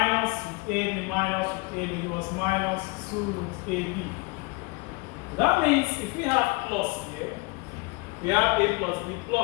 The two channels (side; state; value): right; quieter; 26.6 dB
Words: root ab minus root ab gives us minus 2 root ab. That means if we have plus here, we have a plus b